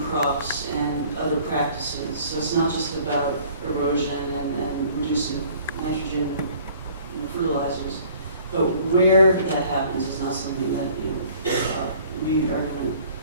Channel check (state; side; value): inverted; both; correlation -0.54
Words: and other practices. So it's not just about erosion and reducing nitrogen fertilizers, but where that happens is not something that we are going